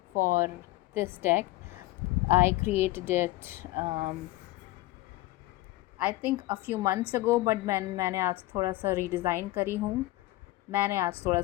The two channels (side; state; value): right; quieter; 18.4 dB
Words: for this deck. I created it I think a few months ago but मैंने आज थोड़ा सा रीडिज़ाइन करी